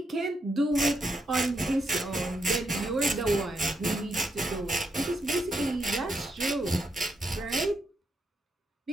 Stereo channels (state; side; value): normal; both; correlation 0.81